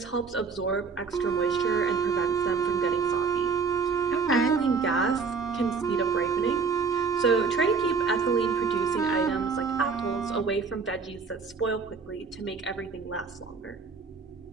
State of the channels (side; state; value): left; quieter; 5.0 dB